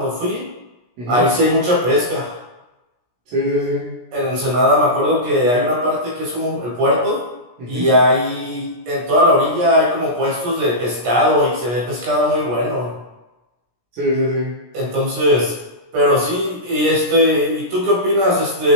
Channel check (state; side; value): late; left; 17 ms